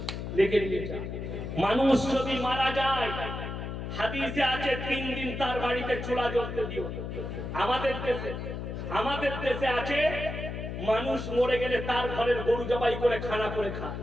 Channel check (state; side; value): noise; left; hum, 6 dB below the sound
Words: লিখে নিয়ে যা। মানুষ যদি মারা যায়, হাদিসে আছে 3 দিন তার বাড়িতে চুলা জ্বলতে দিও। আমাদের দেশে আছে মানুষ মরে গেলে তার ঘরের গরু জবাই করে খানা করে খায়।